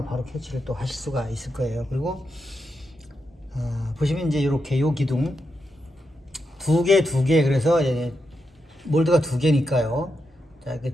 바로 캐치를 또 하실 수가 있을 거예요. 그리고 보시면 이제 이렇게 요 기둥 두 개 그래서 몰드가 두 개니까요. 자, 이렇게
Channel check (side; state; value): both; normal; correlation 0.85